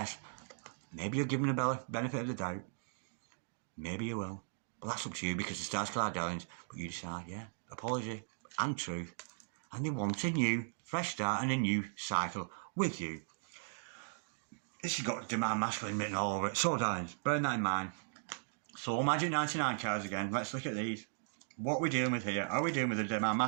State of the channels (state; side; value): silent; left; digital silence